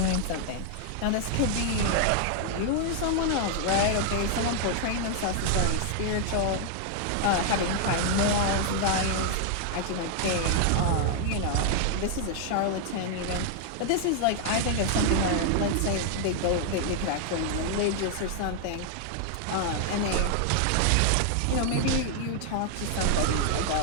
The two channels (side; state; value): both; different; correlation 0.00